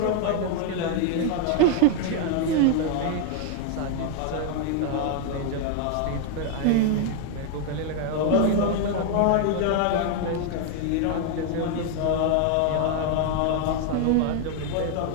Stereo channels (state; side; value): different; both; correlation 0.00